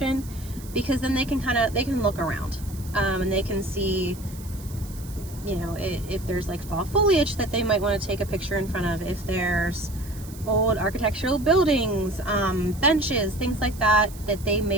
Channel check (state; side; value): noise; right; hiss, 19 dB below the sound